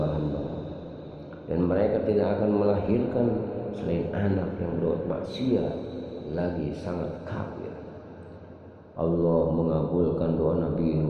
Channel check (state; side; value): identical; both; correlation 1.00